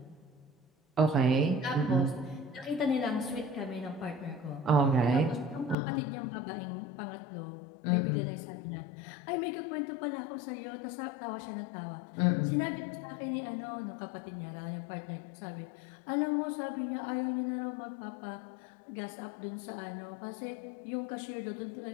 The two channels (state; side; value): drops out; right; at 5.8 s